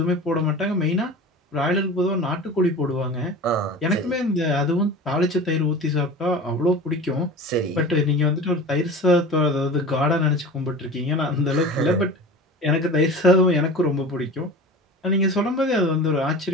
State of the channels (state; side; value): normal; both; correlation 0.35